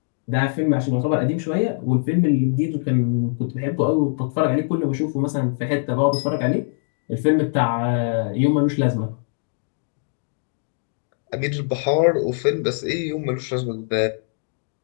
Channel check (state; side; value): silent; right; digital silence